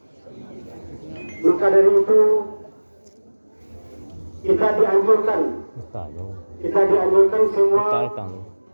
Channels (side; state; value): both; inverted; correlation -1.00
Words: Maka dari itu kita dianjurkan semua